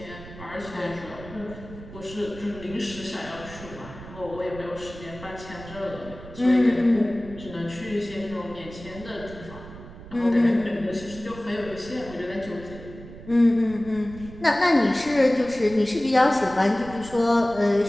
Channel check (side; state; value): right; noise; rumble, 15 dB below the sound